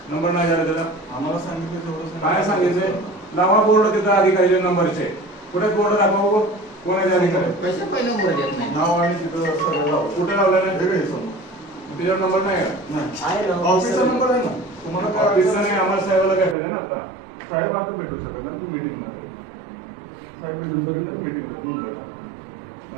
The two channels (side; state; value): left; drops out; at 16.6 s